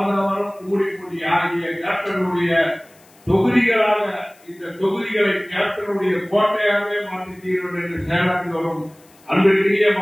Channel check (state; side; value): noise; left; hiss, 29 dB below the sound